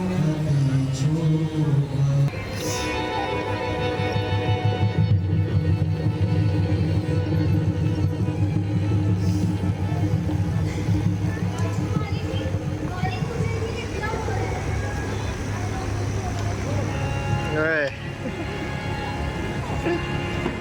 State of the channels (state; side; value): identical; both; correlation 1.00